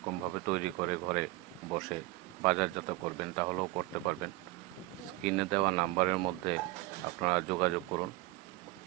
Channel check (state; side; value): quieter; left; 19.9 dB